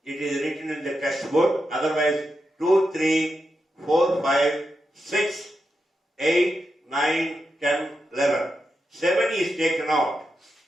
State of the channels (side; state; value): both; normal; correlation 0.87